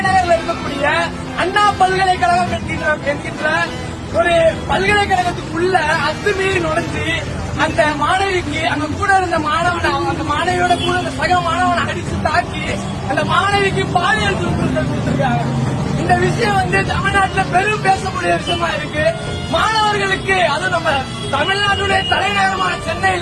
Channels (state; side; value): identical; both; correlation 1.00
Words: இருக்கக்கூடிய அண்ணா பல்கலைக்கழகம் என்கின்ற ஒரு பல்கலைக்கழகத்துக்குள்ள அத்துமீறி நுழைஞ்சு அந்த மாணவிக்கு அங்க கூட இருந்த அந்த மாணவியோட கூட அந்த சக மாணவனை அடிச்சு தாக்கி அந்த மாணவிக்கு பாலியல் துன்புறுத்தல் கொடுத்திருக்காங்க. இந்த விஷயம் தமிழ்நாட்டில் பெரும் பேசக்கூடிய விஷயமா இருக்கு. மாணவர்களுக்கு அது நம்ம தமிழ்நாட்டுடைய தலைநகரமான